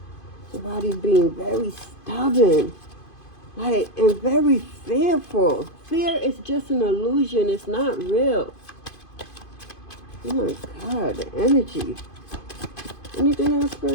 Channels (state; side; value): late; right; 2.5 ms